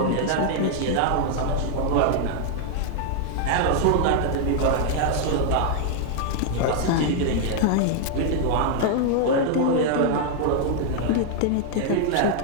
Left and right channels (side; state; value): both; different; correlation 0.00